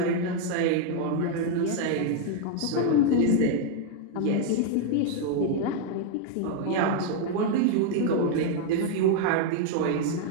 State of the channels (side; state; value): both; different; correlation 0.00